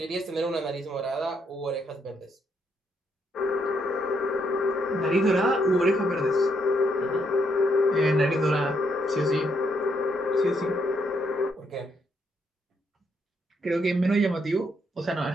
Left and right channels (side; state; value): both; normal; correlation 0.75